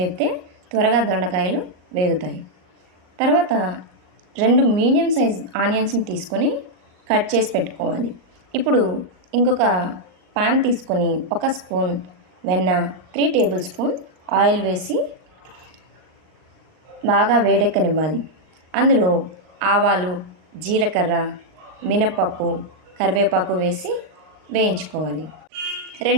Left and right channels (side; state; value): left; late; 38 ms